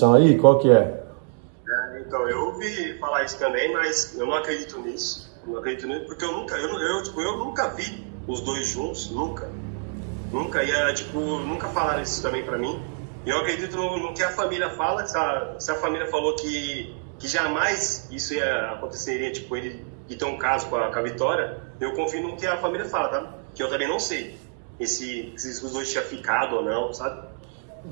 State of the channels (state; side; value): silent; left; 61 dB below the other